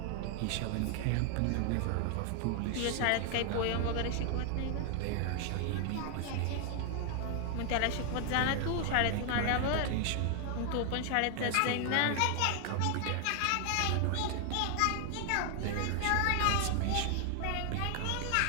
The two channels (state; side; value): different; both; correlation 0.00